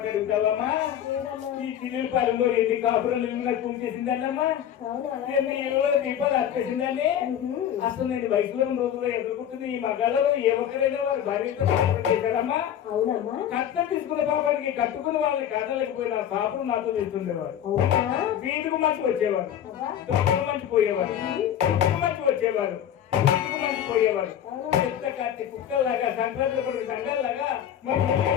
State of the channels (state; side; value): quieter; right; 10.1 dB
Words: అడుగుతావమ్మా? ఈ చిల్లిపాలెంలో ఎన్ని కాపురాలు నాకు చేసిందన్నమ్మా, ఎన్ని దీపాలు అర్పేసిందని. అసలు నేను వయసులో రోజుల్లో ఎదుర్కొంటుంది ఈ మగాళ్ళలో ఏ ఒక్కరైనా వారి భార్యతో కాపురం చేశారమ్మా. అవునమ్మా కట్నం తీసుకున్న పాపానికి కట్టుకుని వాళ్ళని కాదలేకపోయిన పాపలు నాతో చేస్తుండేవారు. వీధికి మంచి వచ్చేవారు, దొంగలు మంచి పోయేవారు, మంచి వచ్చేవారు, మంచి పోయేవారు. చెత్త కట్టి కుక్కల్లాగా సంక్రాంతి సంఘాల్లాగా